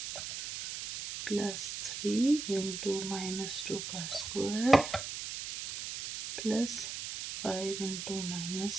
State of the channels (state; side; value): noise; right; hiss, 6 dB below the sound